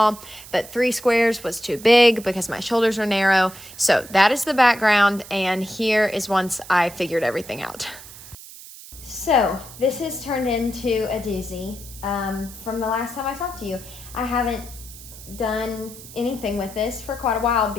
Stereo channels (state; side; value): noise; right; hiss, 16 dB below the sound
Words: But 3 squares was too big because my shoulders are narrow. So that is the background, and here is once I figured everything out. So this has turned into a doozy. From the last time I talked to you, I haven't done anything with this for quite a while